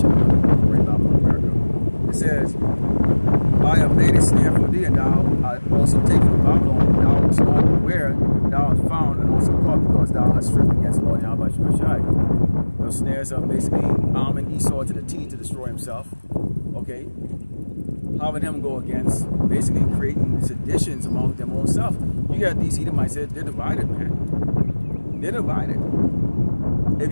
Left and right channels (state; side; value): inverted; both; correlation -1.00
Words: to bring Babylon America. It says, I have made a snare for thee, and thou art also taken Babylon. Thou wast not aware, thou art found and also caught, because thou hast stripped against the Lord Yahweh Shai. Those snares are basically arming Esau to the teeth to destroy himself. Okay? Having him go against basically creating seditions among them own self. You got these Edomites, they're divided, man. They're divided. If